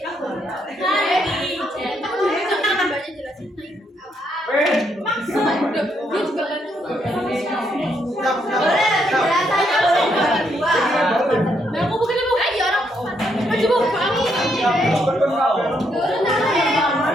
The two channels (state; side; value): normal; both; correlation 0.75